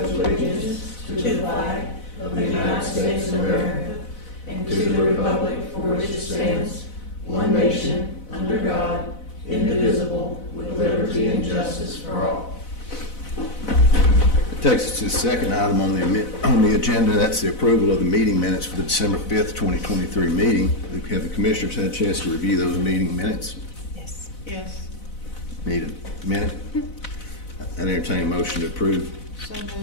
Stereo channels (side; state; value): right; late; 4.0 ms